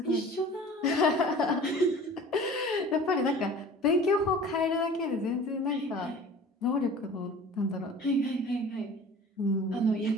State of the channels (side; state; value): both; normal; correlation 0.43